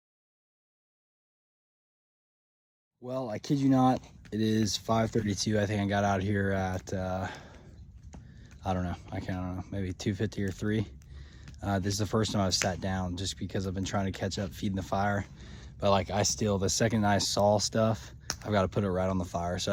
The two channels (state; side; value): identical; both; correlation 1.00